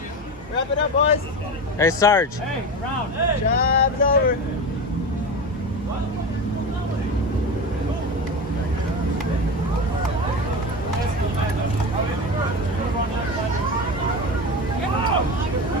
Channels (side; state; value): both; normal; correlation 0.23